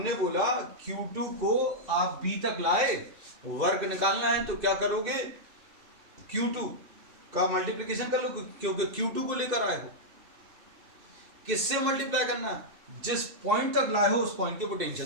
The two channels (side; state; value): left; late; 2.6 ms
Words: बोला Q2 को आप B तक लाए, वर्क निकालना है तो क्या करोगे, Q2 का मल्टीप्लिकेशन कर लो, क्योंकि Q2 को लेकर आए हो। किससे मल्टीप्लाई करना है, जिस पॉइंट तक लाए हो उस पॉइंट के